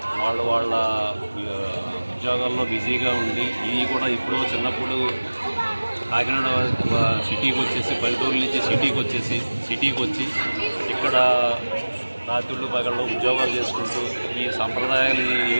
వాళ్ళ ఉద్యోగాల్లో బిజీగా ఉండి ఇవి కూడా ఇప్పుడు చిన్నప్పుడు కాకినాడ సిటీకి వచ్చేసి పల్లెటూరు నుంచి సిటీకి వచ్చి ఇక్కడ రాత్రులు పగళ్ళు ఉద్యోగాలు చేసుకుంటూ ఈ సంప్రదాయాలు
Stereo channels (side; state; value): both; inverted; correlation -1.00